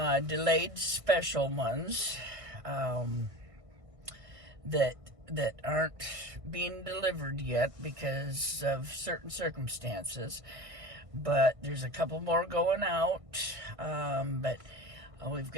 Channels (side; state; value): left; late; 1.6 ms